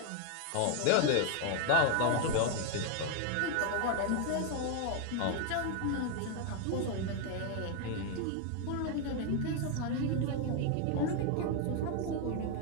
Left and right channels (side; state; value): both; different; correlation 0.01